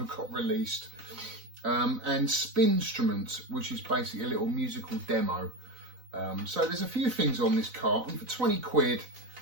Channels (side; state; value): left; late; 4.0 ms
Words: got released. And Spinstrument, which is basically a little musical demo. So there's a few things on this cart, and for 20 quid,